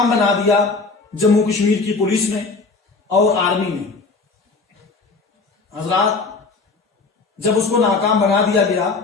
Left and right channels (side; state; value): right; quieter; 4.0 dB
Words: बना दिया जम्मू कश्मीर की पुलिस ने और आर्मी ने। हजरात, जब उसको नाकाम बना दिया गया,